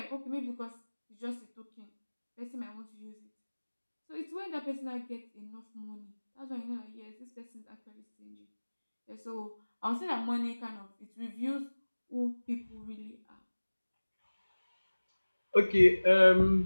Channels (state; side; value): inverted; both; correlation -1.00